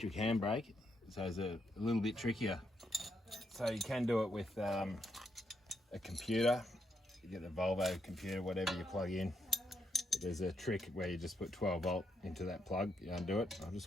handbrake, so it's a little bit trickier. So you can do it with a computer. You get the Volvo computer, whatever you plug in. But there's a trick where you just put 12 volt into that plug. You undo it. I'll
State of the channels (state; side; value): normal; both; correlation 0.79